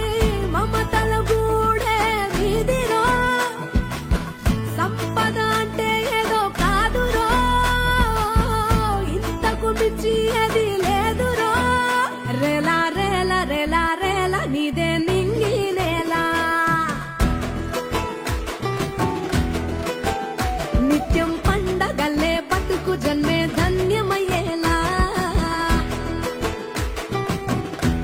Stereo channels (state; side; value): identical; both; correlation 1.00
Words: మమతల గూడే వీధిలో, సంపద అంటే ఏదో కాదురో, ఇంతకు మించి అది